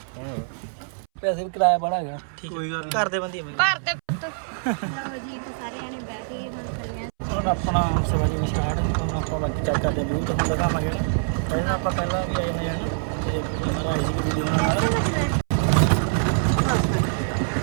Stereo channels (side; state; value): left; silent; 62 dB below the other